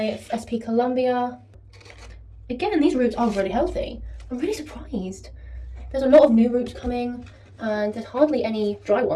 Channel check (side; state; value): both; identical; correlation 1.00